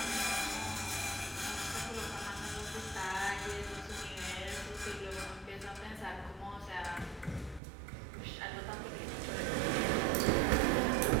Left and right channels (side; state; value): left; drops out; at 7.6 s